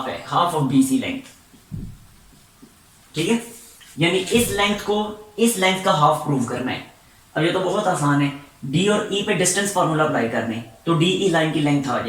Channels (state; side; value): identical; both; correlation 1.00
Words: है, हाफ ऑफ BC लेंथ। ठीक है, यानी इस लेंथ का हाफ प्रूव करना है। अब ये तो बहुत आसान है, D और E पे डिस्टेंस फार्मूला अप्लाई करने, तो DE लाइन की लेंथ आ